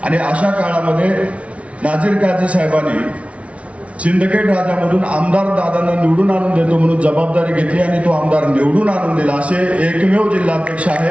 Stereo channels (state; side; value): late; left; 0.063 ms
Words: आणि अशा काळामध्ये नाझीर काझी साहेबांनी सिंदखेड राजामधून आमदार दादांना निवडून आणून देतो म्हणून जबाबदारी घेतली आणि तो आमदार निवडून आणून दिला. असे एकमेव जिल्हाध्यक्ष